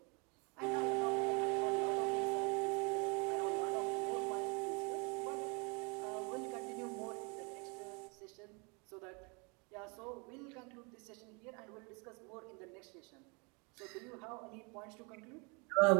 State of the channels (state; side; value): quieter; left; 32.0 dB